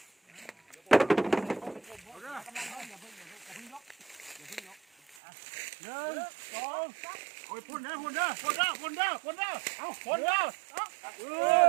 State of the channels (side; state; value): left; drops out; at 5.2 s